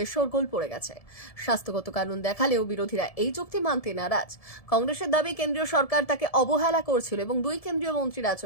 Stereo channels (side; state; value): right; late; 1.7 ms